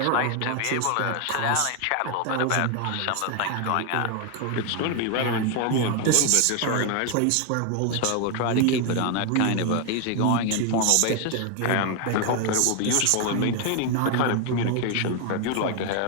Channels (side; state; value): both; different; correlation 0.01